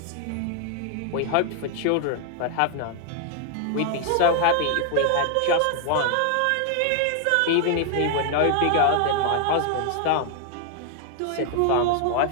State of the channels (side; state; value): both; different; correlation 0.00